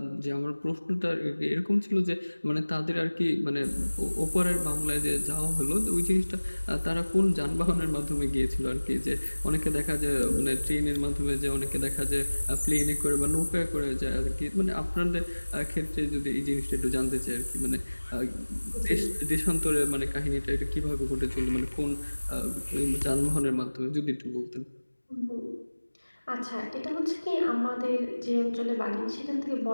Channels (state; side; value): inverted; both; correlation -1.00